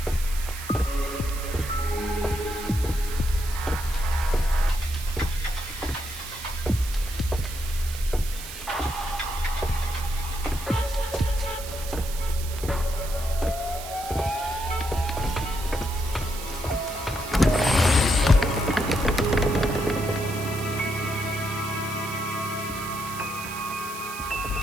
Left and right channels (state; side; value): noise; right; hiss, 11 dB below the sound